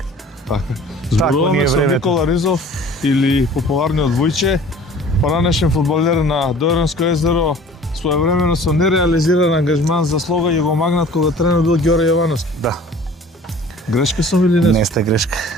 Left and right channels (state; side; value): normal; both; correlation 0.48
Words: Така. Зборуваме со Никола Ризов или популарниот Вујче, поранешен фудбалер на Дојранско езеро. Своевремено со нереализиран ангажман за слога ја го магнат кога тренер бил Ѓоре Јовановски. Да. Грешка сум или не? Не сте грешка.